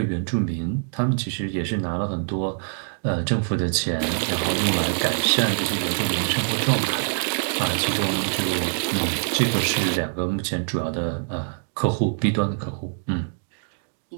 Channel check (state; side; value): silent; left; digital silence